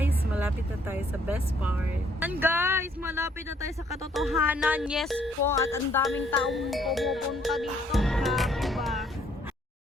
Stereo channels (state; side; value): normal; both; correlation 0.66